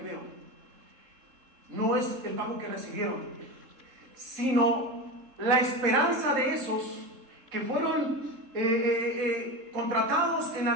veo no es el pago que recibieron, sino la esperanza de esos que fueron contratados en la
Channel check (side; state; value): left; late; 3.6 ms